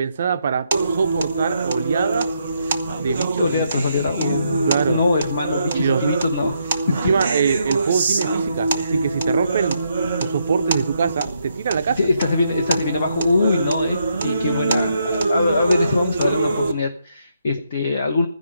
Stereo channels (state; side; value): inverted; both; correlation -0.77